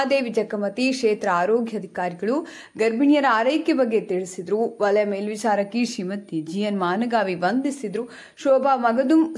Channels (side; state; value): both; identical; correlation 1.00